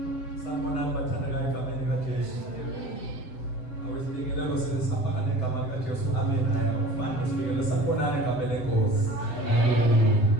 Sanibonani bathandekayo egameni likaJesu. Awesibingelelo sisafaka negama likaJesu. Amen. Haya ufande sibingelelo sanibonani egameni lenkosi.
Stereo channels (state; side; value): late; right; 7.7 ms